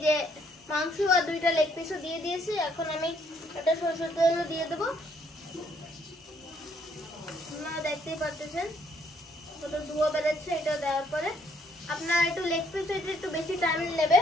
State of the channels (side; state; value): both; normal; correlation 0.68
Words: যে মাংস আর 2টা লেগ পিসও দিয়ে দিয়েছি। এখন আমি এটা সরষের তেল দিয়ে দেবো। আপনারা দেখতেই পাচ্ছেন কত ধোঁয়া বেরোচ্ছে। এটা দেওয়ার পরে আপনার একটু লেগ পিস একটু বেশি টাইম নেবে।